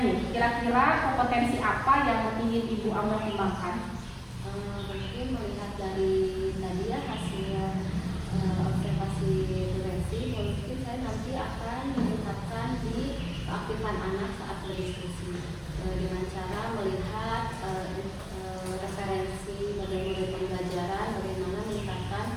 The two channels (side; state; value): both; identical; correlation 1.00